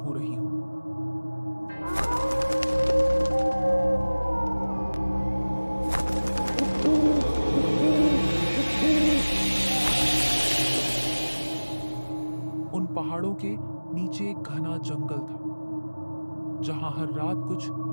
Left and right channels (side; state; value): both; inverted; correlation -1.00